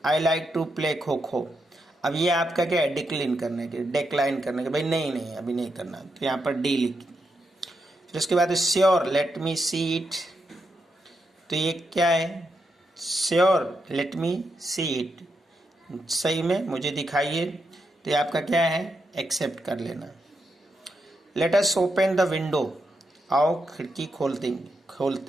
I like to play kho kho, अब ये आपका क्या है डिक्लाइन करने के, डिक्लाइन करने के, भाई नहीं नहीं अभी नहीं करना, तो यहाँ पर डी लिख। फिर उसके बाद sure let me see it, तो ये क्या है sure let me see it, सही में मुझे दिखाइए, तो ये आपका क्या है एक्सेप्ट कर लेना। Let us open the window, आओ खिड़की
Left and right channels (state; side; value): normal; both; correlation 0.83